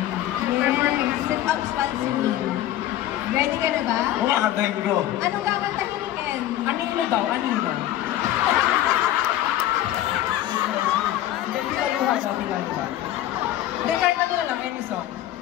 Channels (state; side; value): quieter; right; 13.3 dB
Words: Sit-ups while singing. Ready ka na ba? Oo, kakantahin ko. Anong kakantahin ni Ken? Anino daw, anino. Pilaluhan daw, pilaluhan. Hindi, kahit ano na lang, any song.